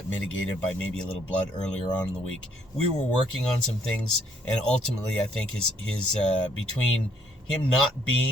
mitigated by maybe a little blood earlier on in the week. We were working on some things, and ultimately I think his between him not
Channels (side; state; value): both; normal; correlation 0.67